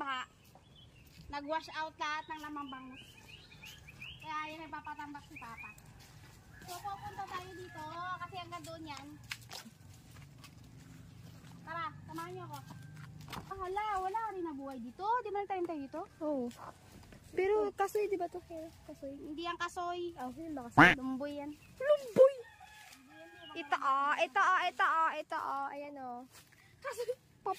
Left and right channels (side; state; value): both; identical; correlation 1.00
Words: Nag-wash out lahat ng lamang bangus. Kaya yan, nagpapatambak si Papa. So pupunta tayo dito kasi hanggang doon yan. Tara, samahan niyo ako. Wala rin nabuhay dito. Di ba tayo dito? Oo. Pero kasoy, di ba to? Kasoy. Hindi yan kasoy. Yun ba kasoy? Lumboy yan. Lumboy! Ito. Ayan o. Kasoy,